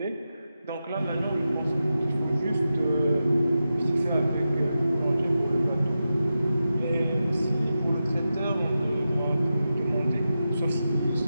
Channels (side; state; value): both; inverted; correlation -0.91